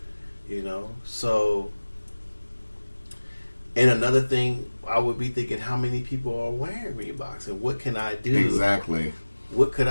you know. So, and another thing, I would be thinking, how many people are wearing Reeboks, and what can I do? Exactly. What could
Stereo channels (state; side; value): inverted; both; correlation -1.00